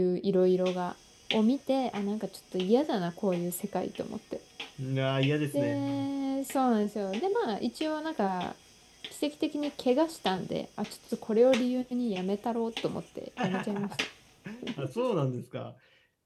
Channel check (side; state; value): both; identical; correlation 1.00